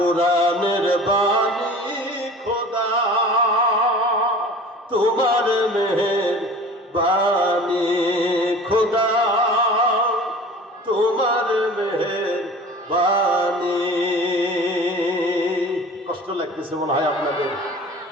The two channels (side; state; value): both; normal; correlation 0.42